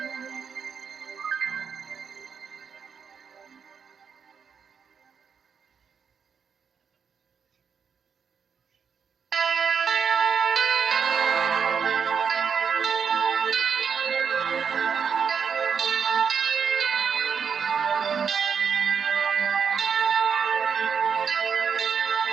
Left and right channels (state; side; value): quieter; left; 6.7 dB